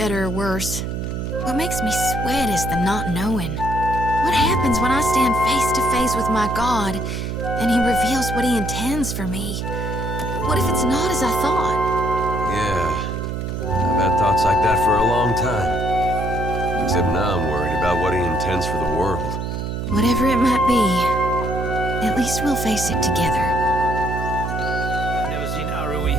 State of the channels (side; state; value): right; noise; hum, 4 dB below the sound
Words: or worse. What makes me sweat is the not knowing. What happens when I stand face to face with my God, and he reveals what he intends for me? What if it's not as I thought? Yeah, I've had thoughts like that for a long time. Except now I'm worried about what he intends for the world. Whatever it might be, at least we'll face it together. I've never seen